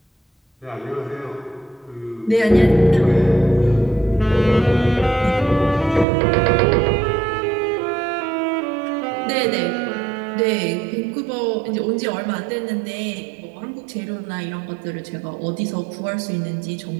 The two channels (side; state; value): left; drops out; at 6.1 s